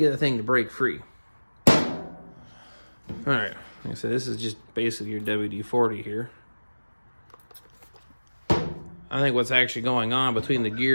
the thing to break free. All right. Like I said, this is just basically your WD-40 here. I think what's actually going on between the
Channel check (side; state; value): both; inverted; correlation -1.00